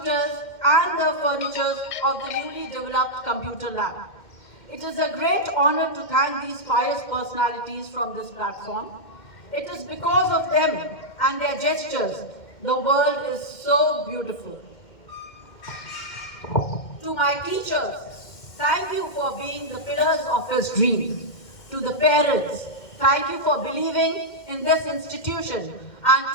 and the furniture of the newly developed computer lab. It is a great honor to thank these pious personalities from this platform. It is because of them and their gestures the world is so beautiful. To my teachers, thank you for being the pillars of his dream. To the parents, thank you for believing in this institution. And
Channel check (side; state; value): right; late; 2.1 ms